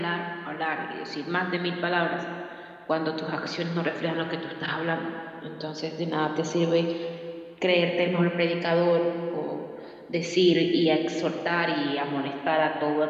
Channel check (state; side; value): identical; both; correlation 1.00